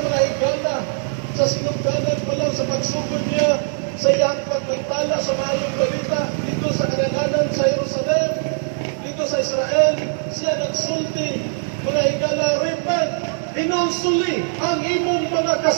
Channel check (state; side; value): silent; left; digital silence